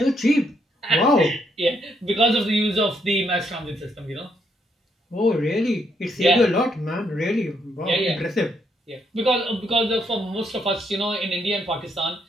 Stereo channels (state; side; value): normal; both; correlation 0.75